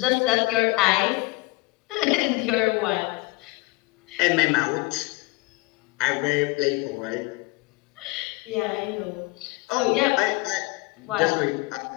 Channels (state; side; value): quieter; right; 22.3 dB